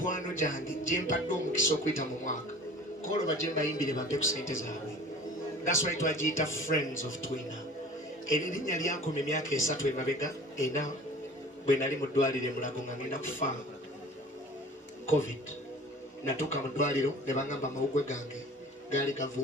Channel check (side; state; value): both; normal; correlation 0.44